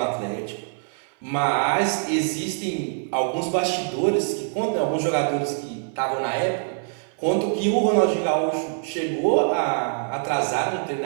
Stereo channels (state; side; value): silent; left; 62 dB below the other